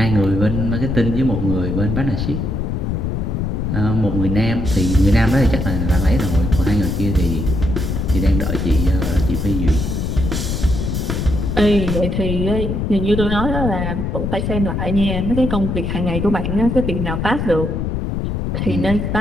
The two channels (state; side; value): noise; left; rumble, 2 dB below the sound